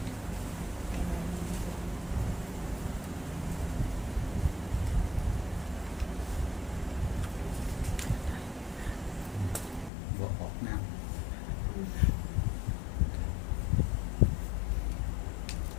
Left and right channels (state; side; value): drops out; right; at 9.9 s